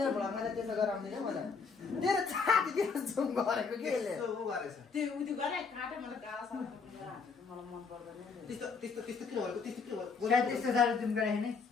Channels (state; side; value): quieter; right; 5.2 dB